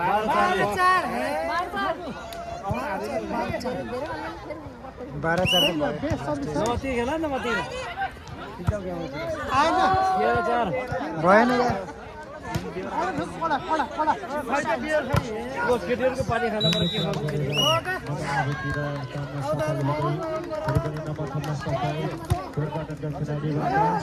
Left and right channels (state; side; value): identical; both; correlation 1.00